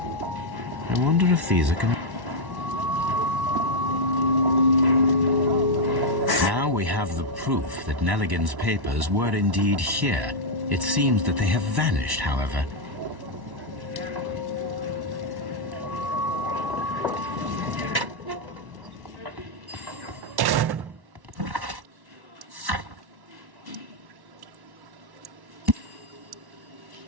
I wonder if these are Now we have the proof that Nelligan's papers were indeed here. It seems that they have vanished, however.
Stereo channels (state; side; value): late; left; 1.1 ms